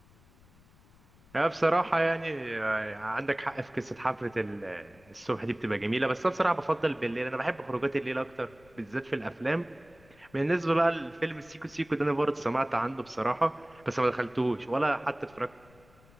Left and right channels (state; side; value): noise; left; rumble, 28 dB below the sound